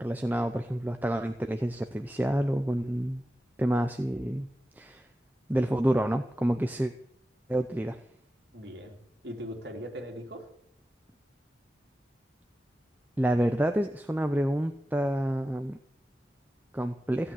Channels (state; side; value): normal; both; correlation 0.93